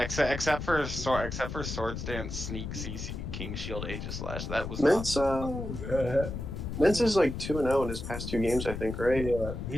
for Swords Dance, Sneak, CC, King Shield, Aegis Slash. That was Mence. Yeah, Mence is like 2-0 in his past 2 games, I think, right?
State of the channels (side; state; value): left; noise; rumble, 6 dB below the sound